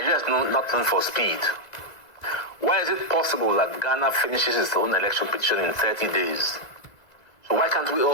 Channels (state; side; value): late; right; 1.9 ms